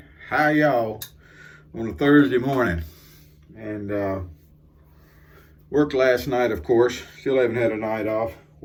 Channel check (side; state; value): both; identical; correlation 1.00